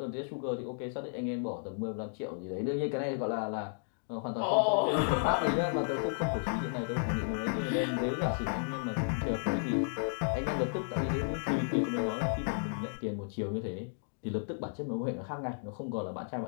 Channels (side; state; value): right; silent; digital silence